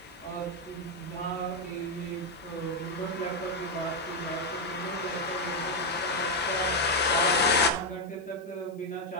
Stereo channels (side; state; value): left; noise; hiss, 30 dB below the sound